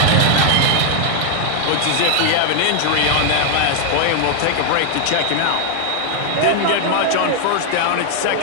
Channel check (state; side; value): different; both; correlation 0.00